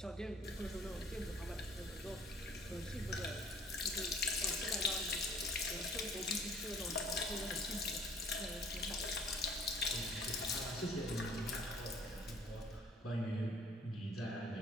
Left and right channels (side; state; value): both; normal; correlation 0.55